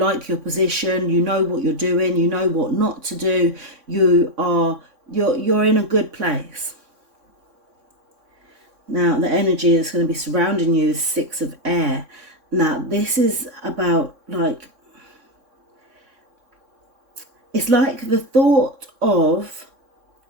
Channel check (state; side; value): late; left; 3.6 ms